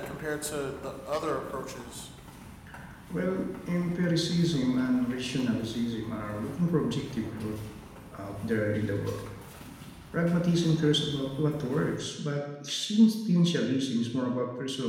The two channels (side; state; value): both; identical; correlation 1.00